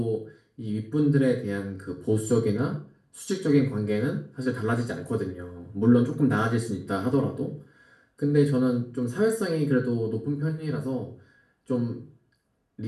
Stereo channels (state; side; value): identical; both; correlation 1.00